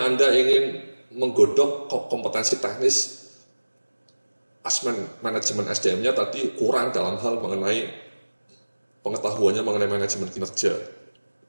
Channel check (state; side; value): inverted; both; correlation -1.00